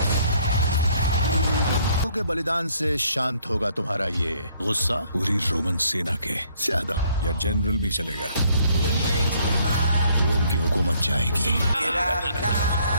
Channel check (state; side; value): inverted; both; correlation -0.65